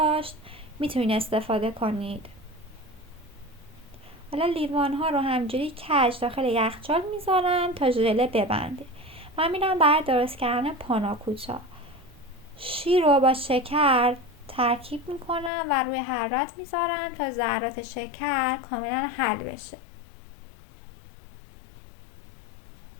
میتونید استفاده کنید. حالا لیوان ها رو همجوری کج داخل یخچال میذارم تا ژله ببنده. من میرم برای درست کردن پاناکوتا. شیر رو با شکر ترکیب میکنم و روی حرارت میذارم تا ذرات شکر کاملا حل بشه.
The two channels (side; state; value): right; drops out; at 15.5 s